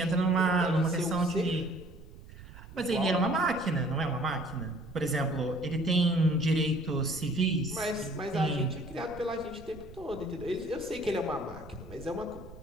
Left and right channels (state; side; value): noise; right; rumble, 17 dB below the sound